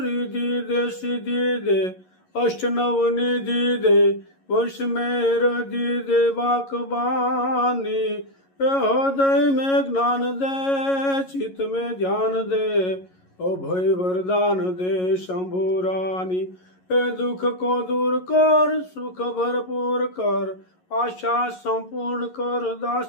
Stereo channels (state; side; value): late; right; 11 ms